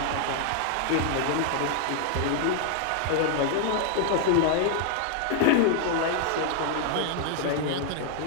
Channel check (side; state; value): both; different; correlation 0.00